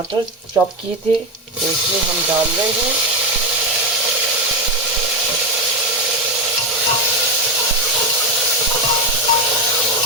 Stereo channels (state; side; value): normal; both; correlation 0.12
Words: चॉप किए थे, तो इसमें हम डाल रहे हैं।